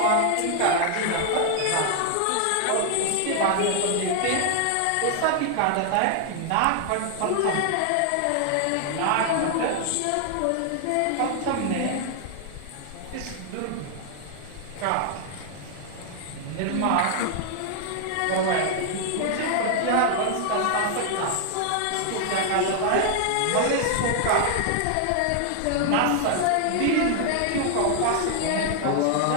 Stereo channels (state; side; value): different; both; correlation 0.00